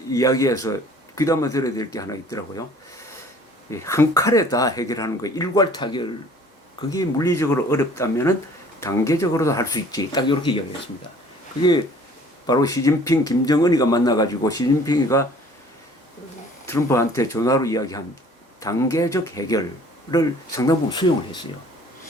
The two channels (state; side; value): normal; both; correlation 0.53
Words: 이야기에서 귀담아 들어야 될 게 하나 있더라고요. 한 칼에 다 해결하는 거, 일괄 타결, 그게 물리적으로 어렵다면은 단계적으로도 할 수 있지. 딱 이렇게 이야기했습니다. 그게 바로 시진핑, 김정은이가 만나가지고 시진핑이가 트럼프한테 전화로 이야기한 단계적 해결을 상당 부분 수용을 했어요.